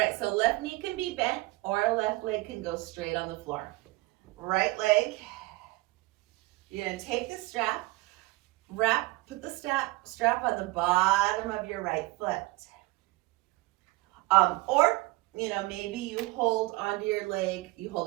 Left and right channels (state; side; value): quieter; left; 21.3 dB